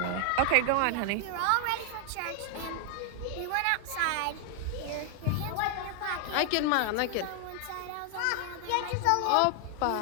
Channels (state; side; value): different; both; correlation 0.00